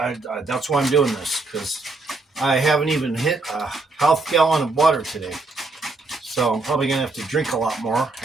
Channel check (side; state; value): left; quieter; 3.5 dB